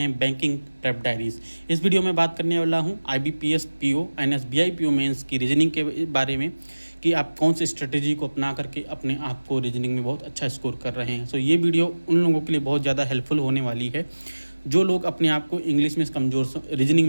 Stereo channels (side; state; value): both; inverted; correlation -1.00